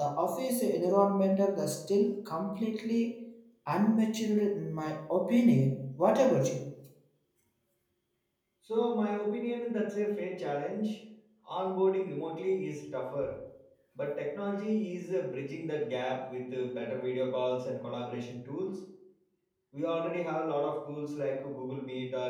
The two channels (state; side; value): identical; both; correlation 1.00